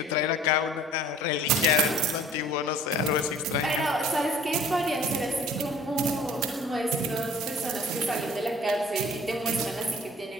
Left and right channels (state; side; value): normal; both; correlation 0.50